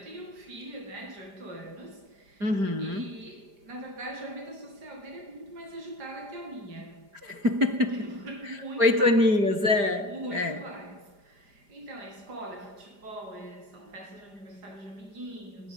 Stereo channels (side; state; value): left; late; 5.0 ms